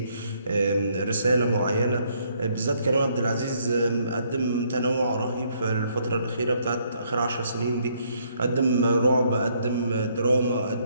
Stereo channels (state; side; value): inverted; both; correlation -0.69